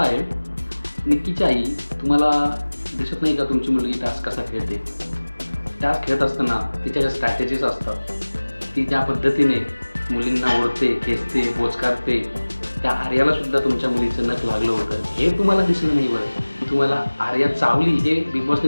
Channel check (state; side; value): inverted; both; correlation -1.00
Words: निक्कीची आई तुम्हाला दिसत नाही का तुमची मुलगी टास्क कसा खेळते? टास्क खेळत असताना तिच्या ज्या स्ट्रॅटेजीज असतात, ती ज्या पद्धतीने मुलींना ओढते, खेचते, बोचकारते, त्या आर्यालासुद्धा तुमच्या मुलीचं नख लागलं होतं हे तुम्हाला दिसलं नाही. बरं, तुम्हाला आर्या चावली हे बिग